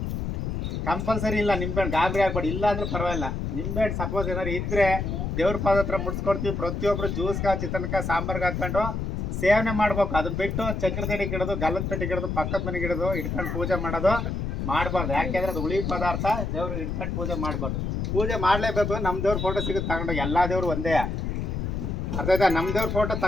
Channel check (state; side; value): noise; left; rumble, 2 dB below the sound